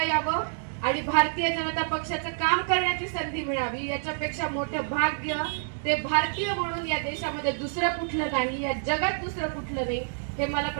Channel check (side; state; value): left; silent; digital silence